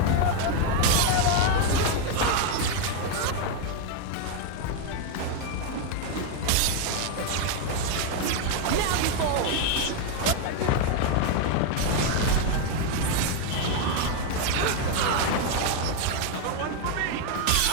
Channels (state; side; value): different; both; correlation 0.01